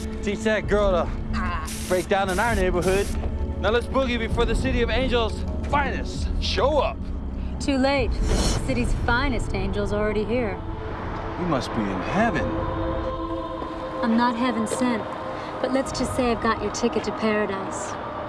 Teach that girl to break down in our neighborhood. Now let's boogie before the City of Angels' finest show up. Too late. The city's finest angel's already here. We must be in heaven. I'm not heaven sent, but let's just say I've got your ticket to paradise.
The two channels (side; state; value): both; identical; correlation 1.00